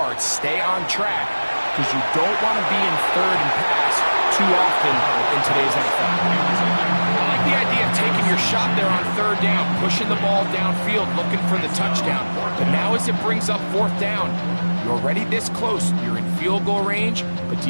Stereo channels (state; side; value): inverted; both; correlation -1.00